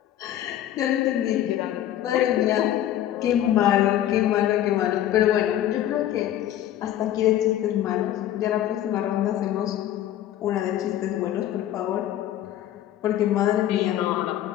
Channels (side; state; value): right; quieter; 12.2 dB